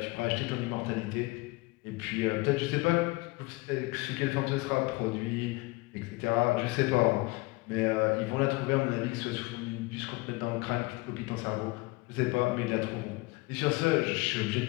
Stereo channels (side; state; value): right; quieter; 23.7 dB